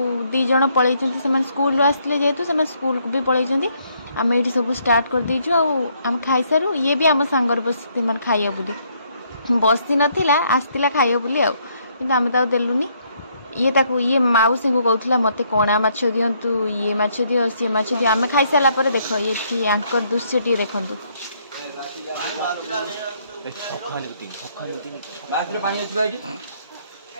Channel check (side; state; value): both; inverted; correlation -0.70